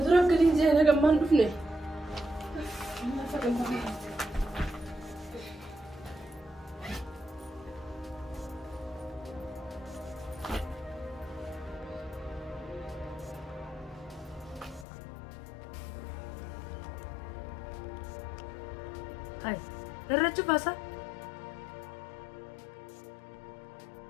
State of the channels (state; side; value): drops out; right; at 14.9 s